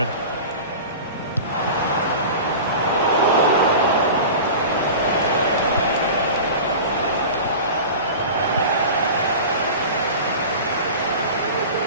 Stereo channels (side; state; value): both; inverted; correlation -0.33